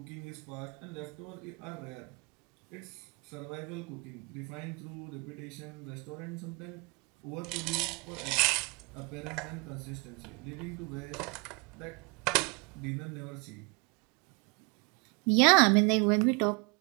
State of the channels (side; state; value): left; quieter; 30.6 dB